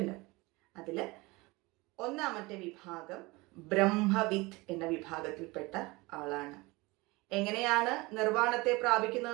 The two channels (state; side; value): quieter; left; 23.3 dB